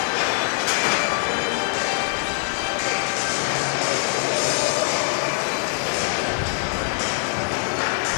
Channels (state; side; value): silent; right; 57 dB below the other